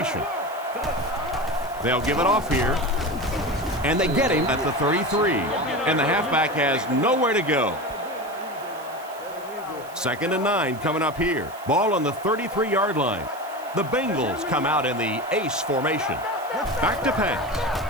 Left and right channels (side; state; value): right; noise; hiss, 21 dB below the sound